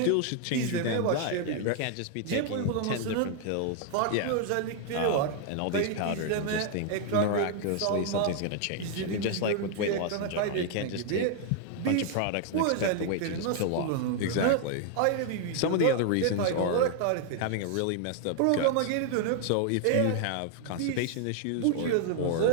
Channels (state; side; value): different; both; correlation 0.00